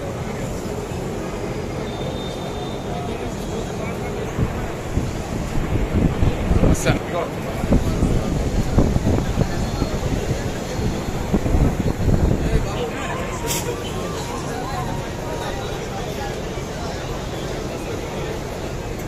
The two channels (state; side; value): identical; both; correlation 1.00